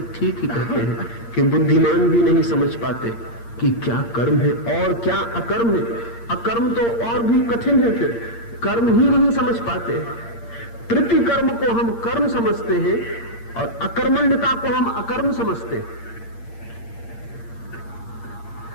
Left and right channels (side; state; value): right; late; 8.7 ms